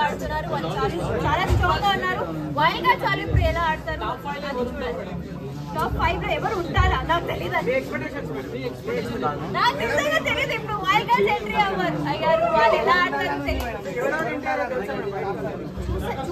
ఆడుతున్నారు. వాళ్ళు చాలా స్ట్రాంగ్ గా ఉన్నారు. వైల్డ్ కార్డ్స్ వాళ్ళు ఇప్పుడు ఎలా ఆడతారు అది చూడాలి. టాప్ 5 లో ఎవరు ఉంటారా నాకు తెలియదు. నాకు నిజంగా తెలియదు. ఇప్పుడు వైల్డ్ కార్డ్స్ ఎంట్రీ అయ్యారు. వాళ్ళు ఎలా ఆడతారు తెలియదు.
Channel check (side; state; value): both; identical; correlation 1.00